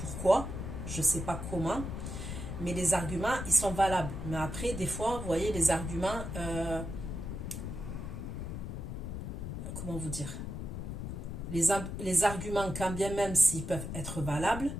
pourquoi, je ne sais pas comment, mais les arguments, ils sont valables. Mais après, des fois, vous voyez, les arguments, comment vous dire, les arguments, quand bien même s'ils peuvent être valables,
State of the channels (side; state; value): left; noise; rumble, 6 dB below the sound